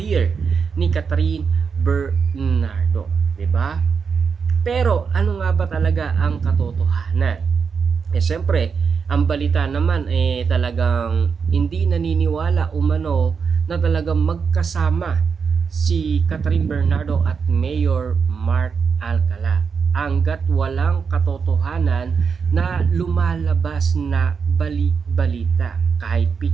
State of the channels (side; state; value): left; quieter; 5.9 dB